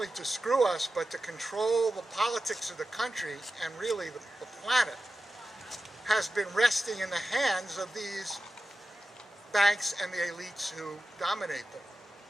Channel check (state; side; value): normal; both; correlation 0.93